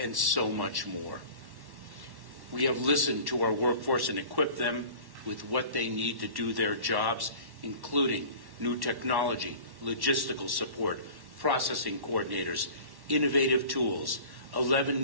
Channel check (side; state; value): left; late; 1.1 ms